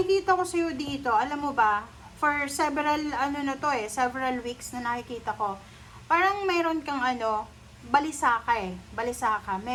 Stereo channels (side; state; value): both; identical; correlation 1.00